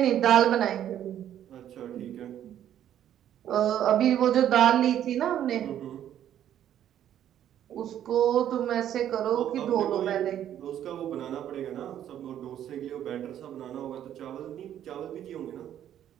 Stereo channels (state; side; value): quieter; left; 10.8 dB